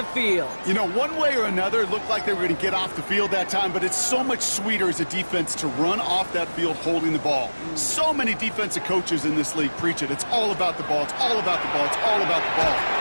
field. You know, one way or another, it looked like they were going to get off the field that time, but it's so much sweeter as a defense to run off that field holding the ball. So many defensive coaches in this league preach it. It's all about the ball. It's all about the ball. It's all about the ball.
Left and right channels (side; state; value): both; inverted; correlation -1.00